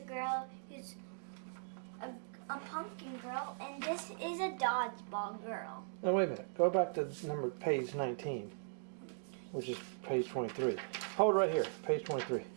girl who's a pumpkin girl, and this is a dodgeball girl. Now wait a minute. Go back to page 19, which is page 23. Hold right here, page 23.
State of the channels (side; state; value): left; silent; digital silence